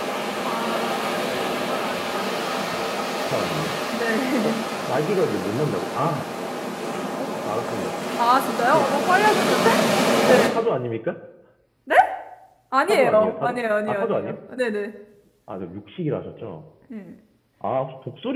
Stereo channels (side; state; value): both; identical; correlation 1.00